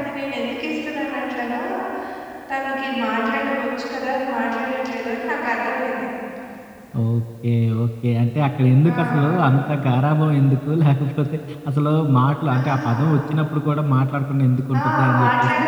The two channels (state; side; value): identical; both; correlation 1.00